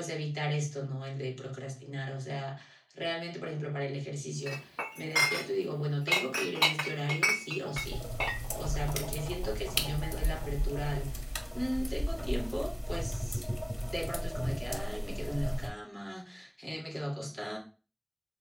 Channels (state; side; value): identical; both; correlation 1.00